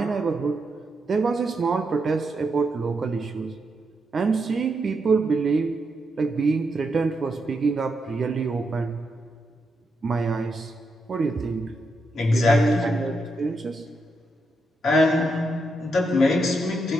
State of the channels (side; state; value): both; normal; correlation 0.82